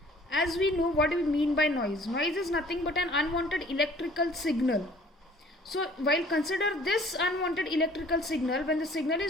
As we know, what do we mean by noise? Noise is nothing but an unwanted electrical signal. So while consider this unwanted electrical signal, when the signal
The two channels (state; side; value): normal; both; correlation 0.53